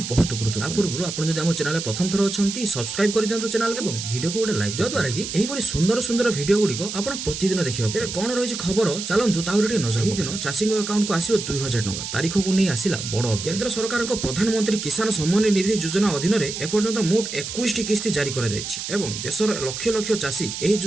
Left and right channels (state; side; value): noise; right; hiss, 6 dB below the sound